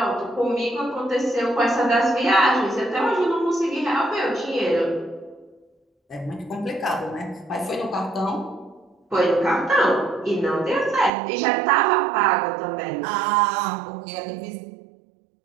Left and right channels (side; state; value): left; drops out; at 11.1 s